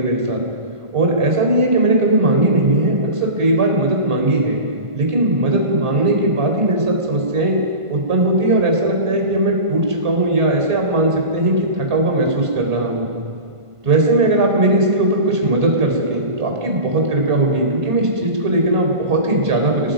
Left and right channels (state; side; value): late; left; 1.5 ms